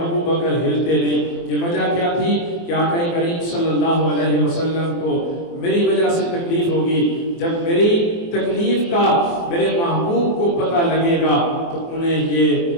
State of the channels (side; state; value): right; late; 24 ms